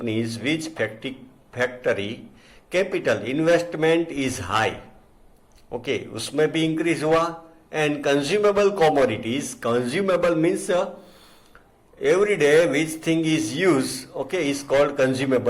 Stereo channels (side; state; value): both; identical; correlation 1.00